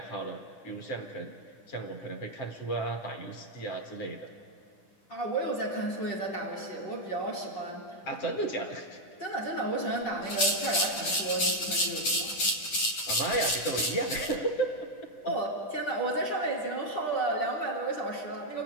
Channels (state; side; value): late; right; 10 ms